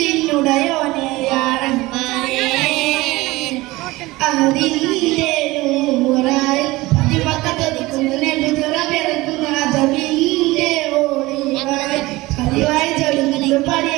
യാ റഹ്മാനേ. അതിന്റെ നൂറായി പതിമക്കത്തൊതുക്കുന്ന നബിസുറമിറക്കുന്ന അജബിന്റെ ഒളിവായി പതിവായി ജ്വലിക്കുന്നു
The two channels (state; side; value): quieter; left; 20.1 dB